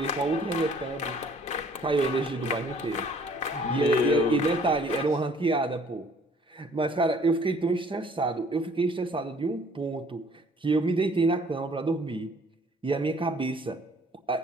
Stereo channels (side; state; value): both; normal; correlation 0.57